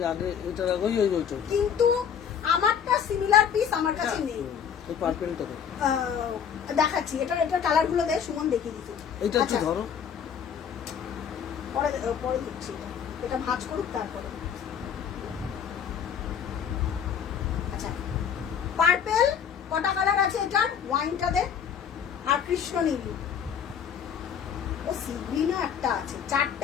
কিন্তু আমারটা সিমিলার পিস আমার কাছে নেই। দেখাচ্ছি, এটার কালার গুলো দেখ, সুমন দেখিয়ে দিচ্ছি। এটা একটু ধরো, পরে দিচ্ছি। এটা ভাঁজ করুক তারপরে। আচ্ছা, পার্পেল কটা কালার আছে এটার? ওয়াইনটা দে, আর কৃষ্ণ নীল, ও সি গ্রিনও একটা আছে।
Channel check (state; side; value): quieter; right; 7.8 dB